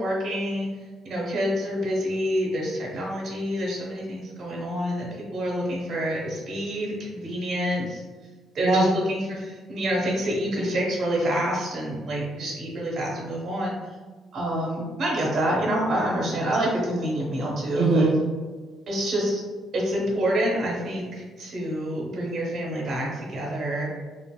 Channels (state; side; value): normal; both; correlation 0.75